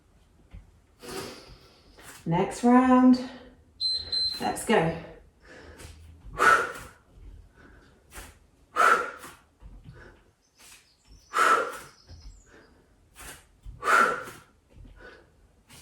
Next round. Let's go.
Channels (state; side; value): identical; both; correlation 1.00